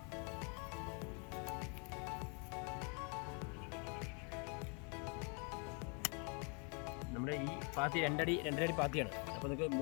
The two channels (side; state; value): right; quieter; 36.1 dB